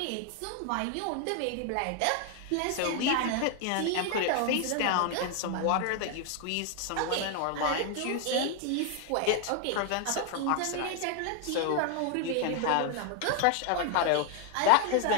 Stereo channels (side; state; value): both; different; correlation 0.00